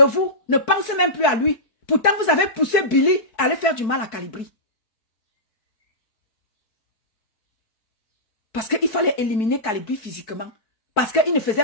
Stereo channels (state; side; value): late; right; 4.6 ms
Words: vous ne pensez même plus à lui. Pourtant, vous avez poussé Billy à aller faire du mal à Calibri. Parce qu'il fallait éliminer Calibri physiquement. Parce qu'il ne